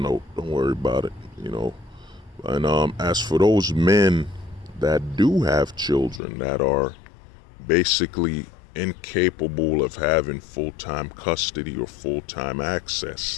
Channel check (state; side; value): drops out; right; at 6.2 s